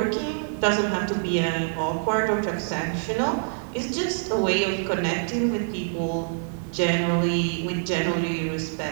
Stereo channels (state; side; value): silent; left; digital silence